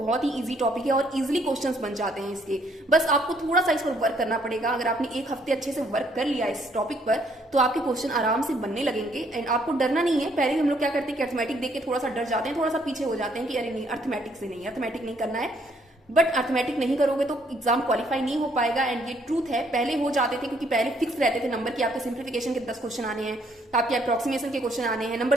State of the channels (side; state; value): both; normal; correlation 0.67